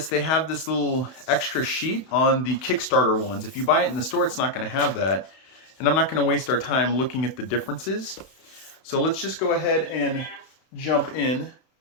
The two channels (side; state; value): right; late; 31 ms